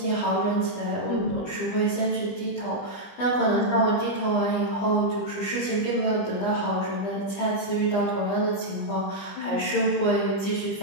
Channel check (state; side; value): late; right; 20 ms